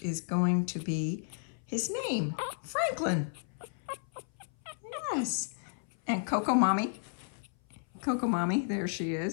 going to be his name, Franklin. Yes. And Coco Mommy, there she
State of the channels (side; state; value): right; silent; 56 dB below the other